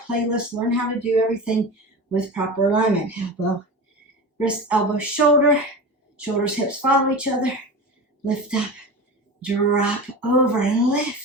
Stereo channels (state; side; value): normal; both; correlation 0.29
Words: playlist. Learn how to do everything with proper alignment. Elbow, wrist, elbow, shoulder. Shoulders, hips follow each other. Lift up. Drop over and